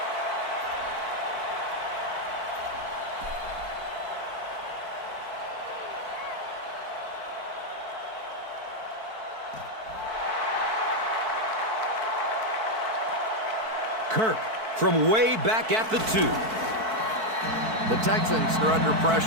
Kirk from way back at the 2. The Texans are under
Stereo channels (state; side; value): late; left; 4.6 ms